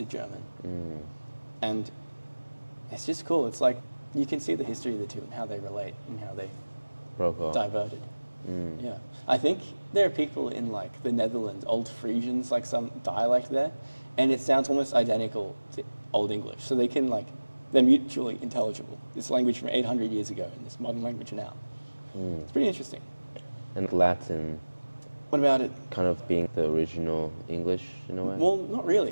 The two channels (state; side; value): inverted; both; correlation -1.00